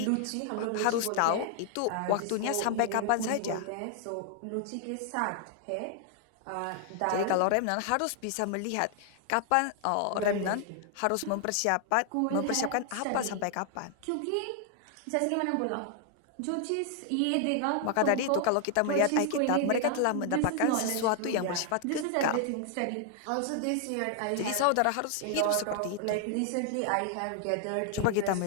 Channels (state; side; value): different; both; correlation 0.00